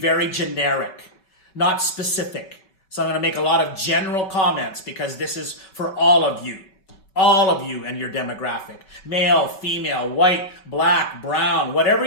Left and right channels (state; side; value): late; right; 5.3 ms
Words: generic, not specific. So I'm going to make a lot of general comments because this is for all of you and your demographic. Male, female, white, black, brown, whatever